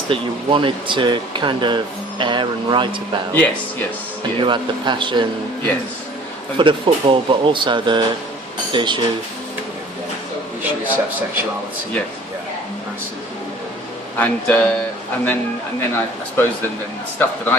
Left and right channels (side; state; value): both; normal; correlation 0.50